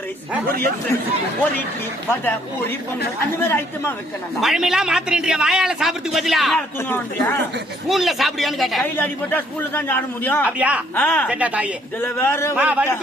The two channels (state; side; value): normal; both; correlation 0.65